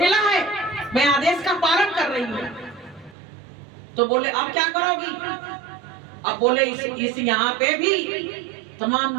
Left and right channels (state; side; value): drops out; left; at 3.2 s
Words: है, मैं आदेश का पालन कर रही हूँ। तो बोले अब क्या करोगी, अब बोले इस यहाँ पे भी तमाम